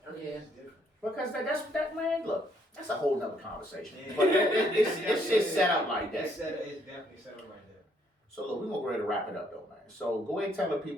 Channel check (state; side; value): normal; both; correlation 0.69